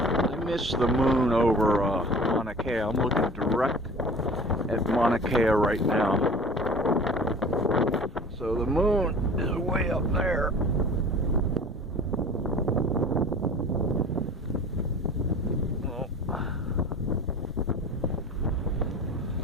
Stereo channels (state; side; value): normal; both; correlation 0.41